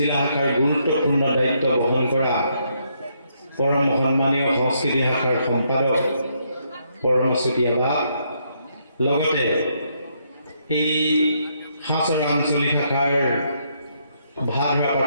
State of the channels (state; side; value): inverted; both; correlation -0.74